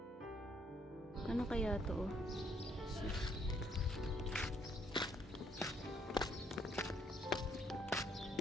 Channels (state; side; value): normal; both; correlation 0.69